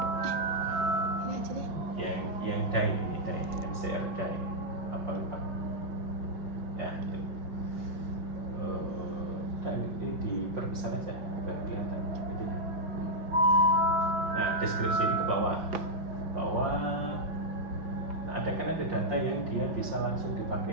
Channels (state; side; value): late; left; 5.7 ms